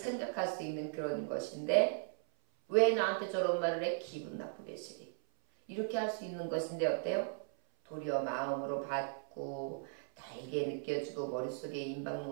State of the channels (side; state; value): left; silent; 53 dB below the other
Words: 수 있는 그런 것인데 왜 나한테 저런 말을 해? 기분 나쁘게 쓰리. 이렇게 할 수 있는 것인데 어때요? 도리어 마음으로 받고 달게 느껴지고 머릿속에